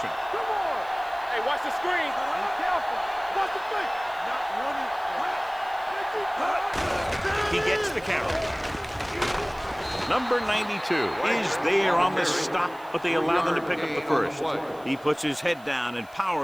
Come on. Hey, watch the screen. Be careful. Watch the fake. Not running. He gets the carry. Number 92 is there on the stop, but they allow them to pick up the first. He puts his head down and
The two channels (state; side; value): noise; right; hiss, 26 dB below the sound